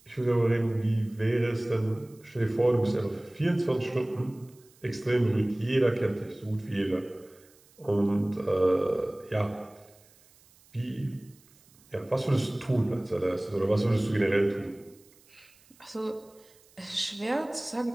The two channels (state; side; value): noise; right; hiss, 29 dB below the sound